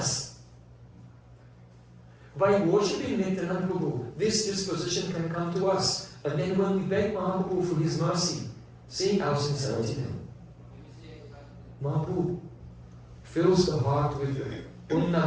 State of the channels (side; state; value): both; identical; correlation 1.00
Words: By worshipping Nityananda Prabhu, this disposition can come to us. And then when we beg Mahaprabhu for his mercy, seeing our sincerity then, Mahaprabhu fills the heart with